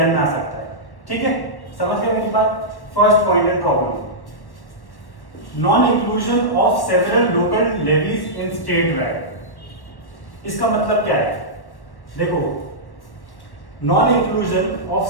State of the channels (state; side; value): late; right; 1.1 ms